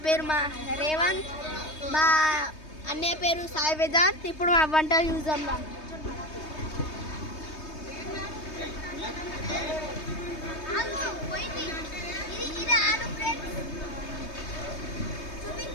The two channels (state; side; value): late; right; 3.2 ms